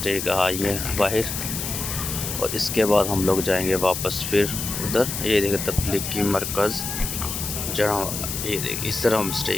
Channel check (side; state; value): left; noise; hiss, 4 dB below the sound